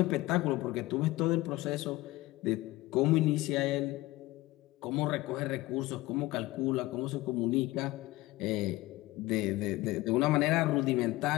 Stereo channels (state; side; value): quieter; right; 19.1 dB